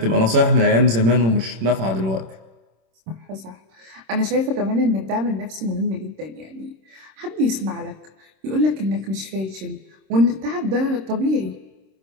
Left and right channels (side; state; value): left; late; 26 ms